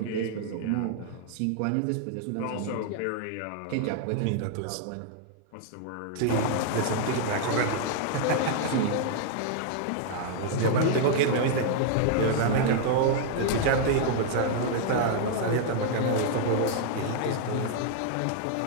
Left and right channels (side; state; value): both; different; correlation -0.01